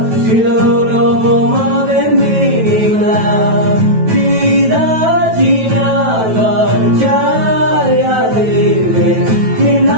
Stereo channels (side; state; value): left; late; 9.2 ms